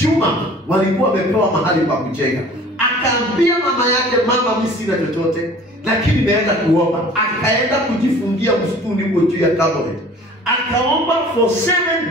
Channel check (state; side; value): normal; both; correlation 0.47